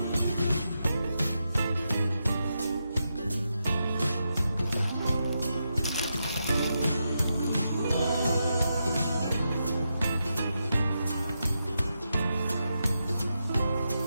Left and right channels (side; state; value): both; inverted; correlation -0.85